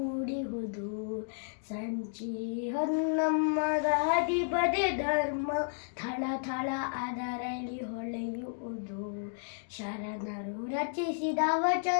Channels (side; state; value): right; silent; digital silence